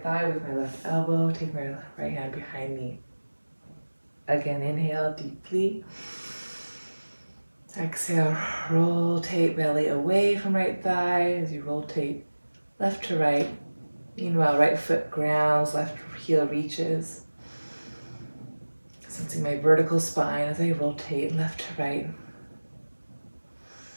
thigh with my left elbow, take my right hand behind me. Again, inhale deeply. Exhale, rotate belly away from right thigh as you rotate left to right. Meanwhile, right foot grounds, left heel reaches. Sensing my vertical spine as I rotate left to right.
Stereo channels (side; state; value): both; inverted; correlation -1.00